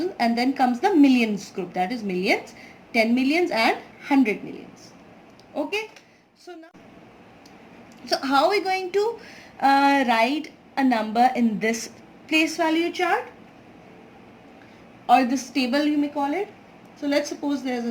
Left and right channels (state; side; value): identical; both; correlation 1.00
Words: and then comes the millions group, that is millions, 10 millions and 100 millions. Okay, so how are we going to write a number in this place value chart, or this table you may call it? So let's suppose there's